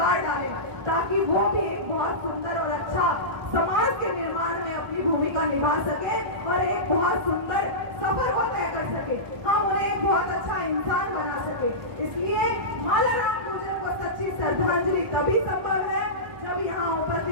डालें, ताकि वो भी एक बहुत सुंदर और अच्छा समाज के निर्माण में अपनी भूमिका निभा सके और एक बहुत सुंदर सफर को तय कर सके, हम उन्हें एक बहुत अच्छा इंसान बना सके। इसलिए मालाराम गुर्जर को सच्ची श्रद्धांजलि तभी संभव है जब यहाँ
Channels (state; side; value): late; left; 1.2 ms